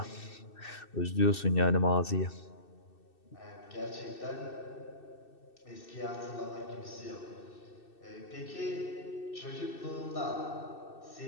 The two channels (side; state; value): right; late; 2.6 ms